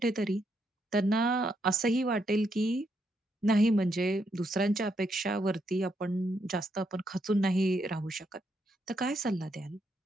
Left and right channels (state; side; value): normal; both; correlation 0.78